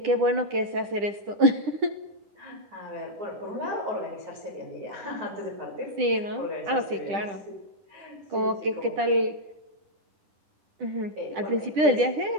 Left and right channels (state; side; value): late; left; 10 ms